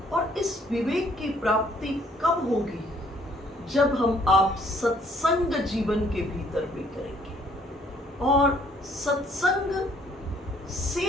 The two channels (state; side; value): normal; both; correlation 0.63